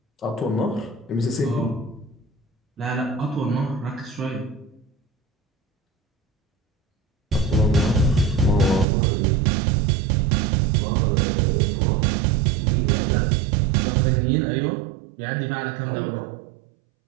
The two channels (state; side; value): drops out; left; at 8.8 s